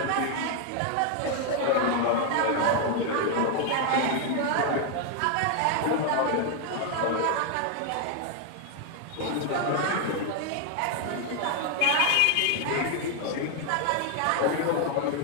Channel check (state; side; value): different; both; correlation 0.00